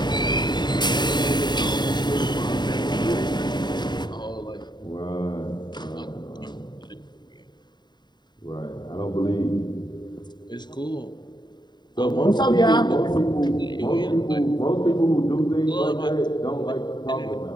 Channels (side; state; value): right; late; 0.21 ms